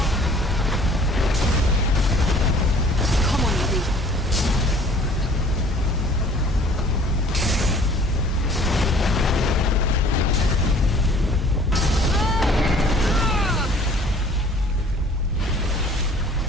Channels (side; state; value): both; normal; correlation 0.52